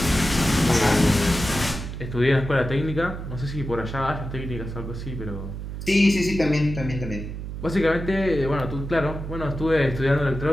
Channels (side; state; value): right; noise; hum, 7 dB below the sound